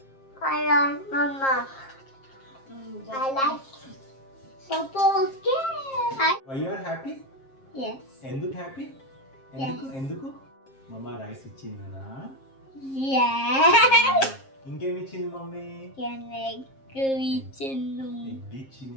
I like Mama. I like Papa. Okay. Why you are happy? Yes. ఎందుకు happy? ఎందుకు మమ్మ rice ఇచ్చిందనా? Yes. ఇంకేమి ఇచ్చింది mummy? Egg ఇచ్చింది.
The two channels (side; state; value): right; late; 7.5 ms